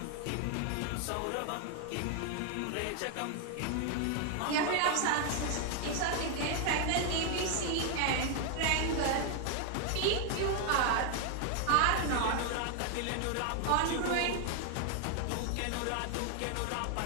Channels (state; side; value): different; both; correlation 0.00